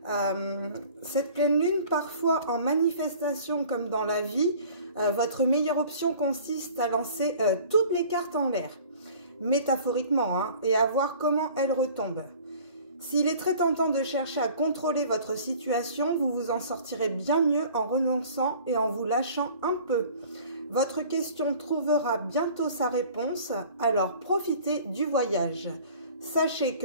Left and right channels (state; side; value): inverted; both; correlation -0.48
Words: cette pleine lune, parfois en manifestation comme dans la vie, votre meilleure option consiste à lancer toutes les cartes en l'air. Métaphoriquement, hein, et à voir comment elle retombe. S'il est très tentant de chercher à contrôler votre situation, vous vous en sortirez bien mieux en renonçant et en vous lâchant un peu. Votre question trouvera bientôt sa réponse, alors profitez du voyage. Sachez